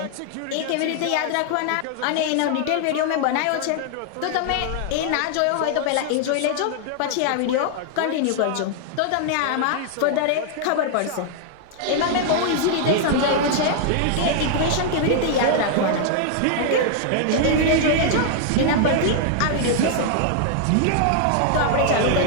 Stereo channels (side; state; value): both; different; correlation -0.01